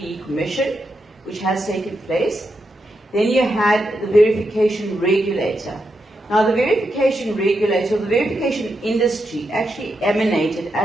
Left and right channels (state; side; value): normal; both; correlation 0.84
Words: Commission, which has taken place. Then you had the verification regulator. Now the verification regulator, the verification industry actually emanated